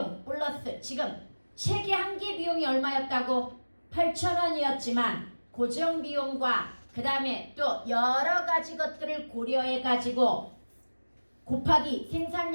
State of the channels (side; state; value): both; inverted; correlation -1.00